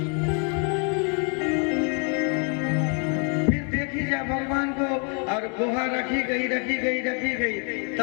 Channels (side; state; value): right; quieter; 39.7 dB